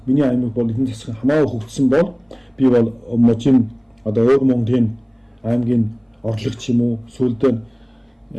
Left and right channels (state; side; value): identical; both; correlation 1.00